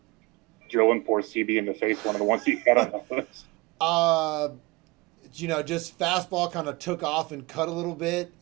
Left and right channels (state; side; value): quieter; left; 24.4 dB